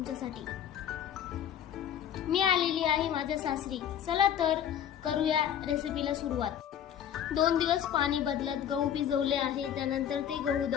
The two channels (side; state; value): right; quieter; 9.6 dB